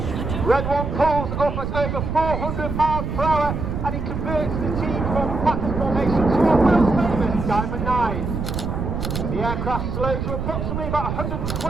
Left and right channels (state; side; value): noise; right; rumble, 3 dB below the sound